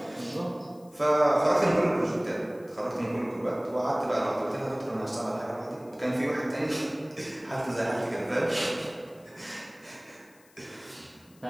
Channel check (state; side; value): noise; left; hiss, 29 dB below the sound